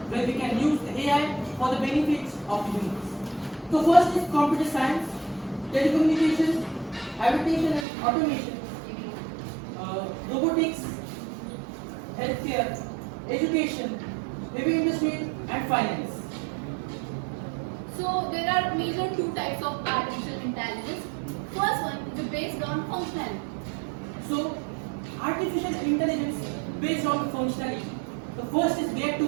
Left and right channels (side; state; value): left; drops out; at 7.9 s